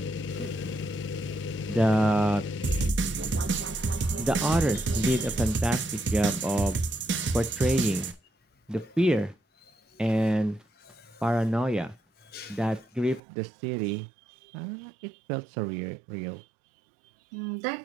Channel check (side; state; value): left; drops out; at 13.2 s